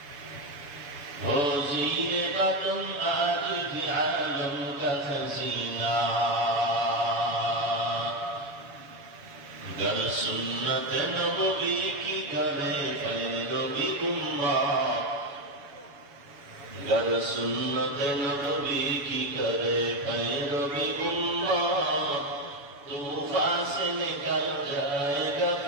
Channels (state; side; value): late; left; 7.1 ms